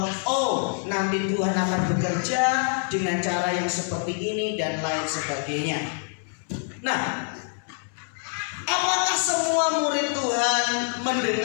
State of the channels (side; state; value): right; silent; 57 dB below the other